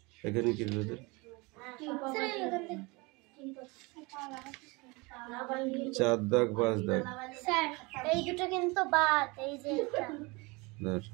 এখানে কি তোদের? চার দাগ পাঁচ দাগ। স্যার এই দুটো কিন্তু বাদ, এই যে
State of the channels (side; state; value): left; quieter; 26.3 dB